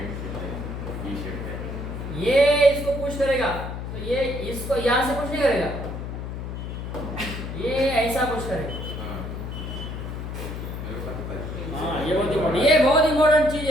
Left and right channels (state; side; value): noise; left; hum, 6 dB below the sound